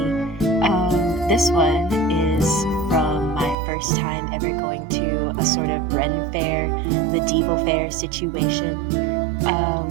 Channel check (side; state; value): left; drops out; at 3.6 s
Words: This one is from my first time ever going to a sort of Ren fair, medieval fair situation.